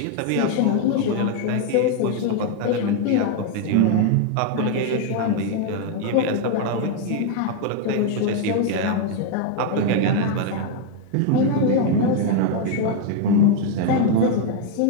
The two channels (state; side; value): different; both; correlation 0.00